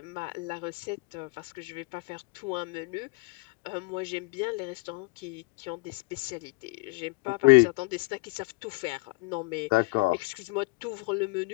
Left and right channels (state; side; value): quieter; right; 27.7 dB